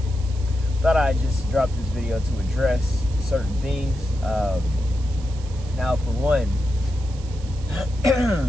thought I'd just drop this video to address certain things. Now, for one,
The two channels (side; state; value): right; noise; hiss, 21 dB below the sound